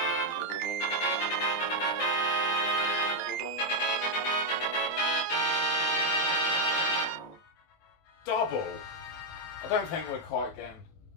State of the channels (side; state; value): right; late; 19 ms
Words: Double. I don't think we're quite getting...